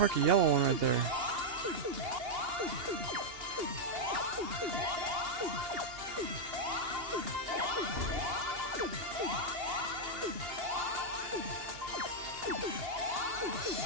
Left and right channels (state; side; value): late; left; 2.8 ms